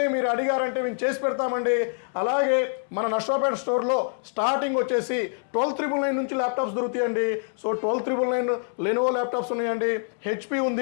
మీరు అడిగారంటే మేము చేసి పెడతామండి. అలాగే మన నర్సరావుపేట స్టోర్లో స్టార్టింగ్ వచ్చేసి 12,999 నుంచి ల్యాప్టాప్స్ దొరుకుతాయండి. సో 12,999 లెనోవో ల్యాప్టాప్స్ ఉన్నాయండి, హెచ్పి ఉంది,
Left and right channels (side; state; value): right; silent; 61 dB below the other